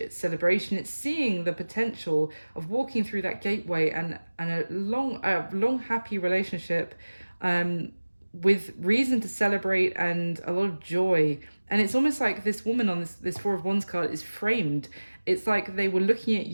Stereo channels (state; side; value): inverted; both; correlation -1.00